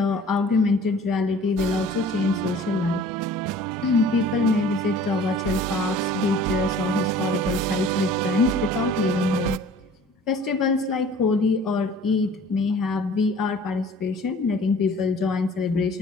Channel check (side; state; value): both; normal; correlation 0.48